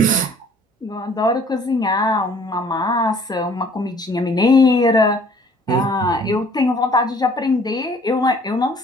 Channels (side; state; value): both; normal; correlation 0.56